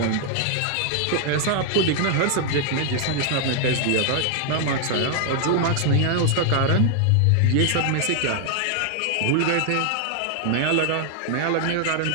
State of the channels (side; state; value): both; different; correlation 0.00